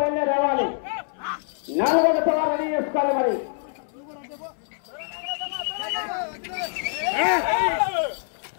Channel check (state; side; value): silent; right; 62 dB below the other